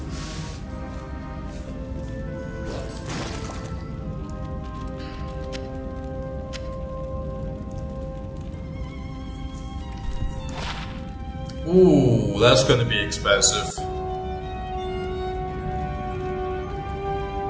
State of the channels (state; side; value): identical; both; correlation 1.00